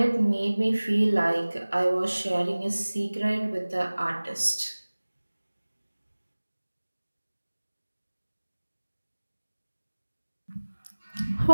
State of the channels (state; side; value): inverted; both; correlation -1.00